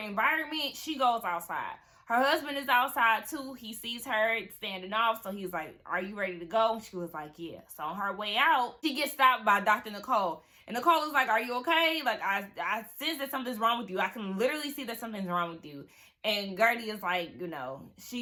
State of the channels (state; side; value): identical; both; correlation 1.00